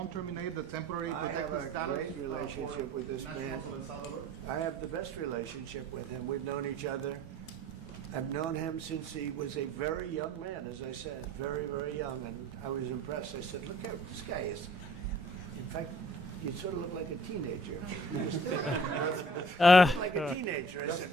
terminate the temporary I have protected a status. great relationship with this man. I have the best relationship with him. We've known each other. I've known him since he was a very young man, as I said, very, very young, and I was impressed. I said, look how this guy is. In fact, you sort of look like a teenager. You still look like a teenager. I said,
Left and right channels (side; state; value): both; normal; correlation 0.52